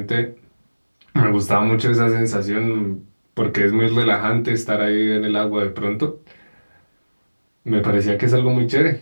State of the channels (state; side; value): inverted; both; correlation -1.00